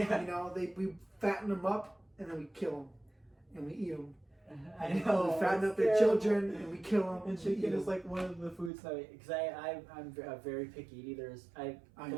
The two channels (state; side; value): drops out; left; at 8.7 s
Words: We fatten them up and then we kill them and we eat them. I know. We fatten up their children and we kill them. And chicken is like one of the foods that because I'm a very picky eater. I